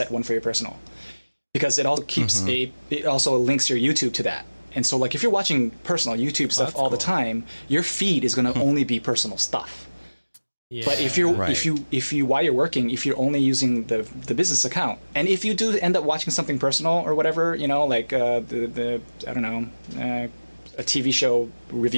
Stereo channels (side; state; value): both; inverted; correlation -1.00